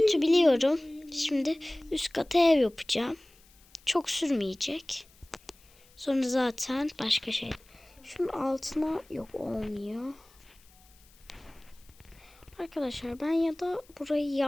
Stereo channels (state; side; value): noise; left; hiss, 28 dB below the sound